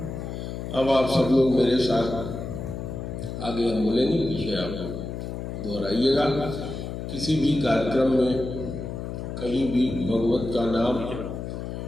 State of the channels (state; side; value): noise; left; hum, 6 dB below the sound